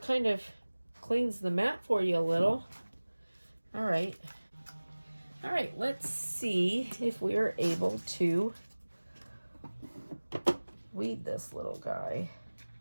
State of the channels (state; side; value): inverted; both; correlation -1.00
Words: kind of cleans the mat for you a little. All right. All right, let's see if we are able to weed this little guy.